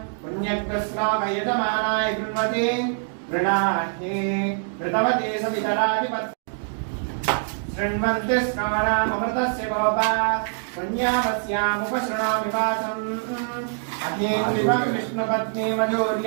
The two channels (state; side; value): silent; left; digital silence